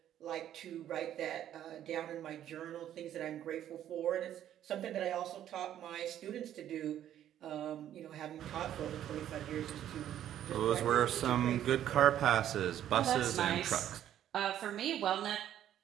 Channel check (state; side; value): quieter; left; 11.2 dB